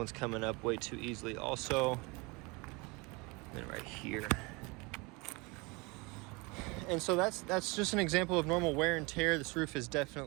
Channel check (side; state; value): left; quieter; 27.0 dB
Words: coming up way too easily also. And right here. And so that's just an example of normal wear and tear. This roof is